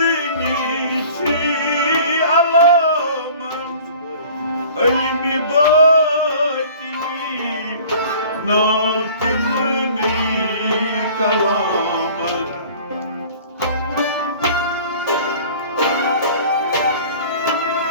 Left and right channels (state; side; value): inverted; both; correlation -0.46